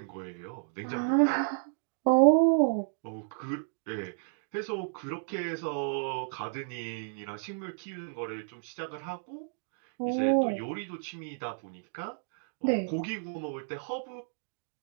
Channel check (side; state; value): left; silent; digital silence